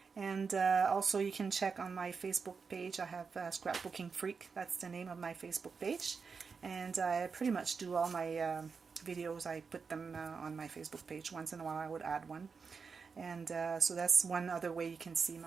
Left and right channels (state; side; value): quieter; left; 5.3 dB